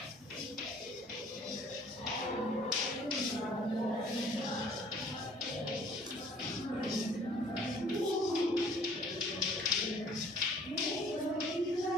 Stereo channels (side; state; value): both; normal; correlation 0.55